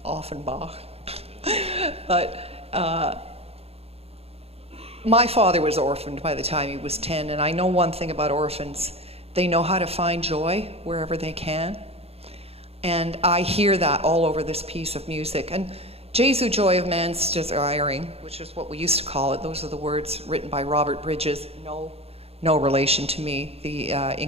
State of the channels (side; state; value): left; late; 0.29 ms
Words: Offenbach. But my father was orphaned by the time he was 10, and I know one thing about orphans. They know how to find joy wherever they can. And I hear that all over this piece of music. And Jesu joy of man's desiring, which is what we used to call it, those are the words written by Robert Bridges, no relation to me, the